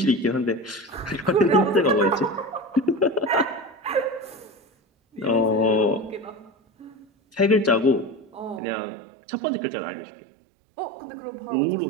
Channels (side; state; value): left; drops out; at 8.6 s